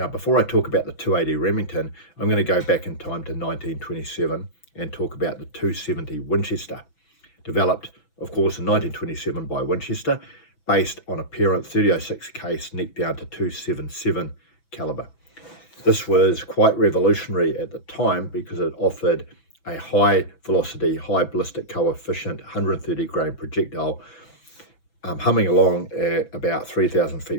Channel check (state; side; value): late; right; 6.0 ms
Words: before I talk about the 280 Remington, I'm going to go back in time to 1927 and talk about the 270 Winchester, developed of course in 1927 by Winchester, based on a parent 30-06 case neck down to 277 caliber. This was quite revolutionary at the time because it offered a high velocity, high ballistic coefficient, 130 grain projectile, humming along at about 3,000